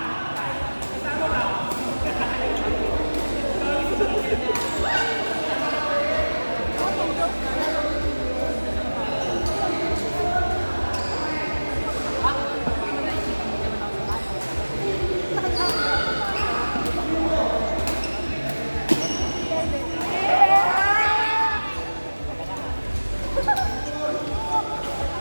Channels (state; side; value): inverted; both; correlation -1.00